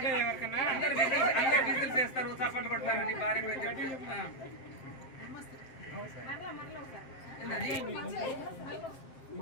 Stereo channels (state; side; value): late; right; 7.6 ms